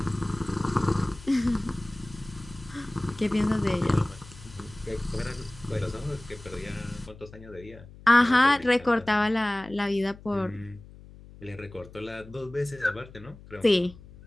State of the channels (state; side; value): noise; left; hum, 19 dB below the sound